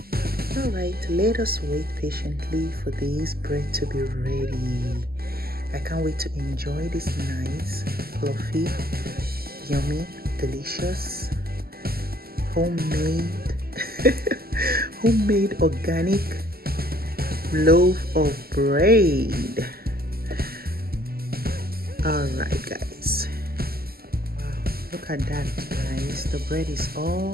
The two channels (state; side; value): late; left; 0.45 ms